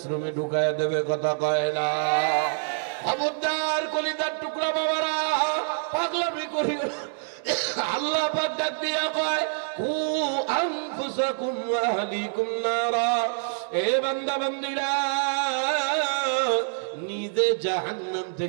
ঢুকায় দেবে, কথা কয় না? খবরদার কলিজার টুকরা বাবারা, পাগলামি করিও না। আল্লাহ পাক ডাক দিয়া কয়, কু আনফুসাকুম ওয়া আহলিকুম নারা। এ বান্দা বান্দীরা, নিজে জাহান্নাম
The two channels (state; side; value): silent; left; digital silence